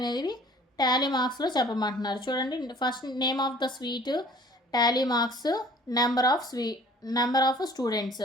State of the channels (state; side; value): normal; both; correlation 0.52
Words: టాలీ మార్క్స్లో చెప్పమంటున్నారు. చూడండి first name of the sweet, Tally marks, number of students.